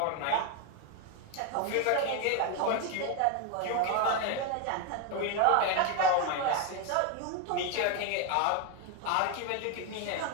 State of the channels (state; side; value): different; both; correlation 0.01